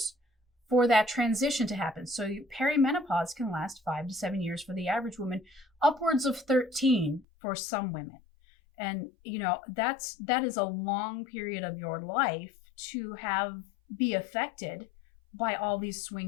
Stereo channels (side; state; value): right; drops out; at 7.2 s